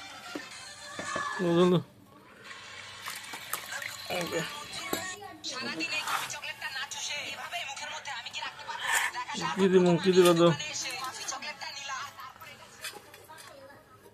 জল তো কি দিব কি দিব তো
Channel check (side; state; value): both; identical; correlation 1.00